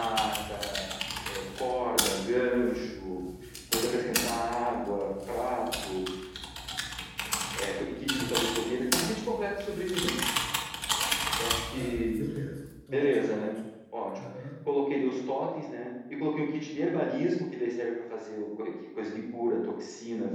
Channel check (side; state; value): both; identical; correlation 1.00